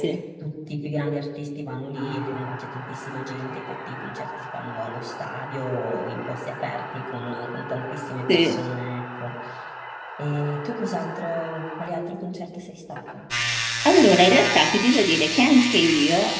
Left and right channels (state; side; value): identical; both; correlation 1.00